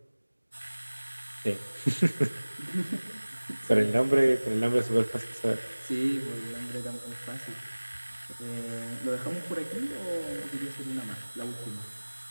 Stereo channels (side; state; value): both; inverted; correlation -1.00